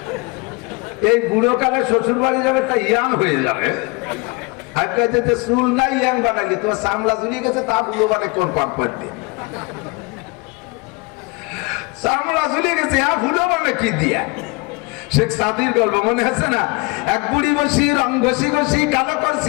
এই বুড়ো কালে শ্বশুর বাড়ি যাবে, তা ইয়াং হয়ে যাবে। চুল নাই ইয়াং বানাইলে তোমার চামড়া ঝুলিয়ে গেছে, তা বুড়ো মানে কোন পাম্পার দিয়ে চামড়া ঝুলিয়ে গেছে, বুড়ো মানে কি দিয়া? শেখ সাদির গল্প মনে আছে না? এক বুড়ি বসি রং ঘষি ঘষি কালো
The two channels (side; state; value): right; quieter; 27.5 dB